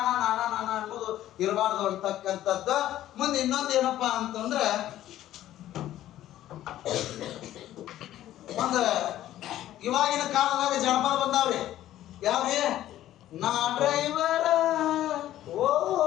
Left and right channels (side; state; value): right; quieter; 13.3 dB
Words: ನಾನಾ ನಾನಾ ಅನ್ನೋದು ಇರಬಾರ್ದು ಅಂತಕ್ಕಂಥದ್ದು. ಮುಂದೆ ಇನ್ನೊಂದು ಏನಪ್ಪಾ ಅಂತಂದ್ರೆ ಒಂದು ಇವಾಗಿನ ಕಾಲದಾಗ ಜನಪದ ಬಂದಾವ್ರಿ. ಯಾವ್ರಿ? ನಾ ಡ್ರೈವರ ಓ